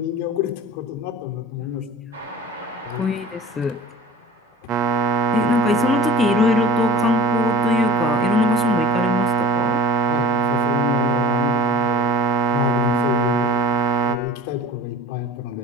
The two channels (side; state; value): both; normal; correlation 0.37